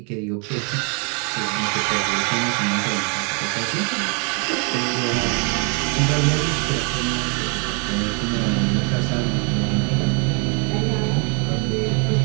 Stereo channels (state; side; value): quieter; left; 35.7 dB